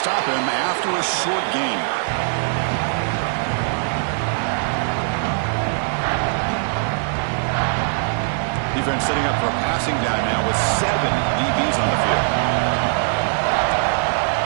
him after a short gain. Defense setting up for a passing down now with 7 DBs on the field.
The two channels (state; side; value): silent; left; 65 dB below the other